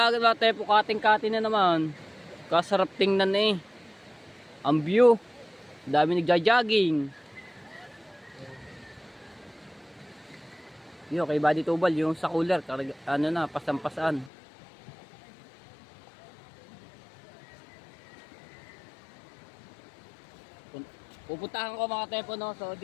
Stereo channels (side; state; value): right; drops out; at 14.3 s